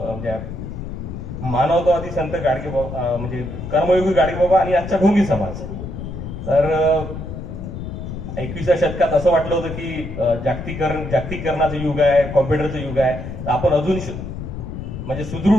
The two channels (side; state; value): left; noise; rumble, 8 dB below the sound